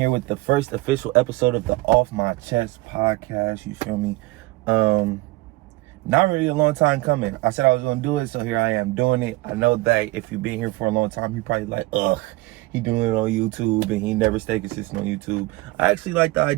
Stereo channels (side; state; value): left; quieter; 20.4 dB